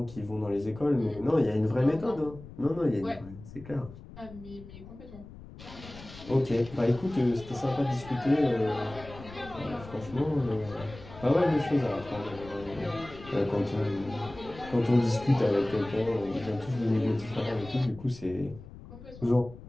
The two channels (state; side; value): noise; left; rumble, 16 dB below the sound